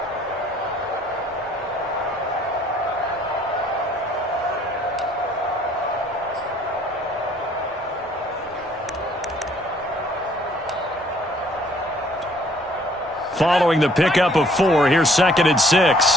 Following the pickup of 4, here's 2nd and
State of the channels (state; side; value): normal; both; correlation 0.61